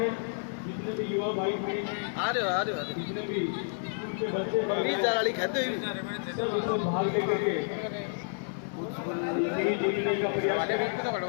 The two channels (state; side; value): silent; right; digital silence